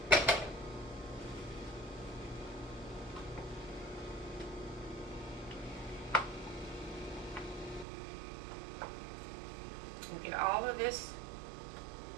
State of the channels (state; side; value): drops out; left; at 7.9 s